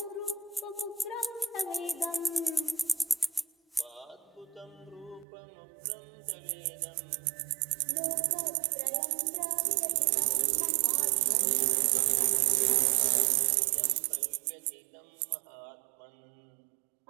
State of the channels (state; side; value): drops out; left; at 5.2 s